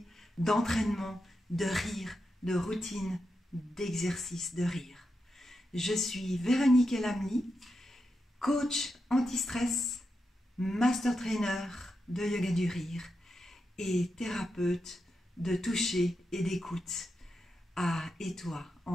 d'entraînement, de rire, de routine, d'exercice de rire. Je suis Véronique Elamli, coach anti-stress, master trainer de yoga du rire et thérapeute de toucher et d'écoute à Étoile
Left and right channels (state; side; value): normal; both; correlation 0.86